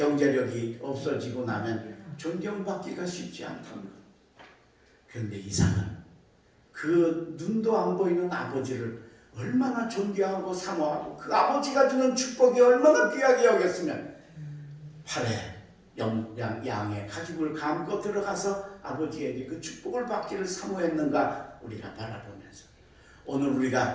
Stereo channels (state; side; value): identical; both; correlation 1.00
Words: 없어지고 나면 존경받기가 쉽지 않다는 것. 그런데 이삭은 그 눈도 안 보이는 아버지를 얼마나 존경하고 사모하고 그 아버지가 주는 축복이 얼마나 귀하게 여겼으면 팔에 양의 가죽을 감고 들어가서 아버지에게 그 축복을 받기를 사모했는가 우리가 바라보면서 오늘